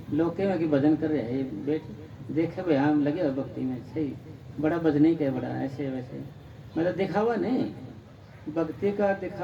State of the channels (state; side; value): identical; both; correlation 1.00